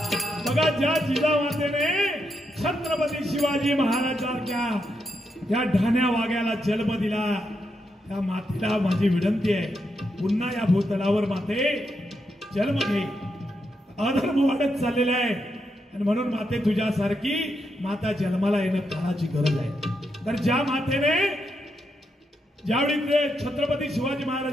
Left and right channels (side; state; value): both; normal; correlation 0.82